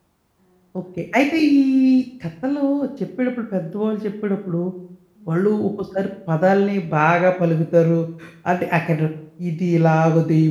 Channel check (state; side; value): identical; both; correlation 1.00